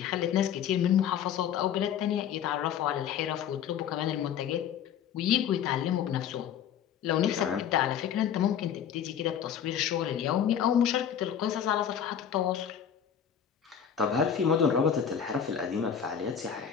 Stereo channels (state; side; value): quieter; right; 8.6 dB